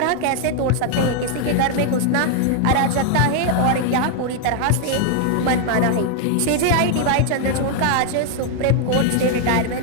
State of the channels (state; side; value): different; both; correlation 0.00